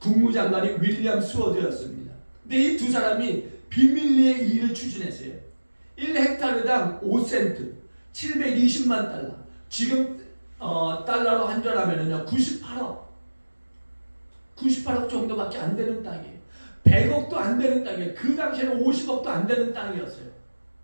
윌리엄 스워드였습니다. 근데 이 두 사람이 비밀리에 일을 추진했어요. 1헥타르당 5센트, 720만 달러. 지금 달러로 환전하면은요 98억 정도밖에 안 되는 땅이에요. 100억도 안 되는 땅이에요. 그 당시에는 50억도 안 되는 땅이었어요.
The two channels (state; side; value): inverted; both; correlation -1.00